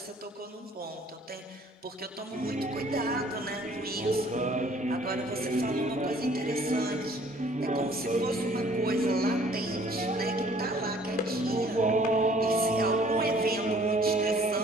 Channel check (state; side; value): normal; both; correlation 0.57